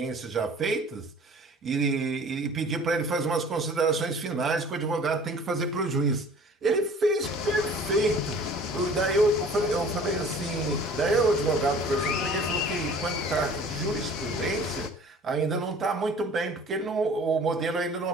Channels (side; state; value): both; normal; correlation 0.48